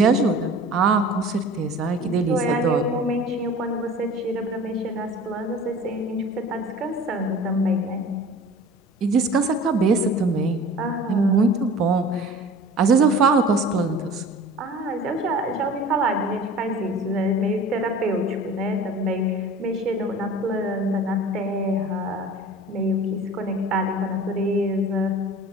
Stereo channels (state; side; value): normal; both; correlation 0.42